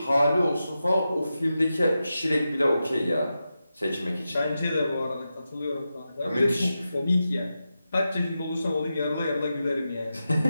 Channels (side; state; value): both; inverted; correlation -0.91